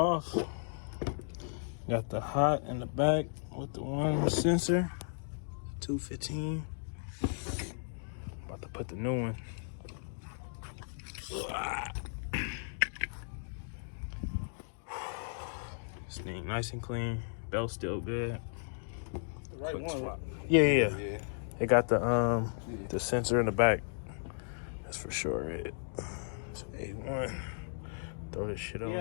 Got the hot in the back with the one sensor. 215. About to put the new one. This thing nice and clean. Belt still good. The right one. Swap. Yeah. It got the sensor in the back. That's for sure it. It's A1. Throw this shit on.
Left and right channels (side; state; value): right; silent; digital silence